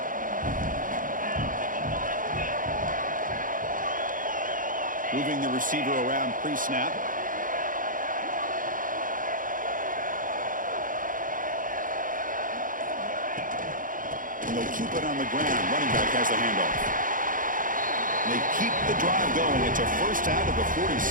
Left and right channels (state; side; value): late; left; 0.39 ms